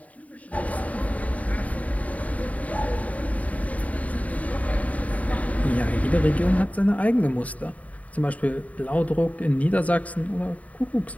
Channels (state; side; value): late; right; 0.069 ms